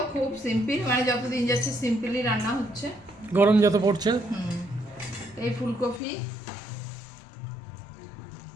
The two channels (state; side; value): drops out; right; at 6.0 s